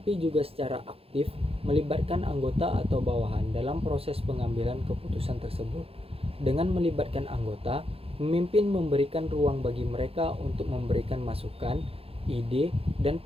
juga secara aktif melibatkan anggota atau bawahan dalam proses pengambilan keputusan tersebut. Dengan melibatkan anggota, pemimpin memberikan ruang bagi mereka untuk memberikan masukan, ide, dan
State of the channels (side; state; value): left; late; 0.28 ms